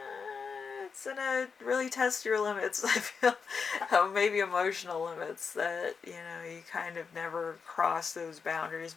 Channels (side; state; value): right; quieter; 5.6 dB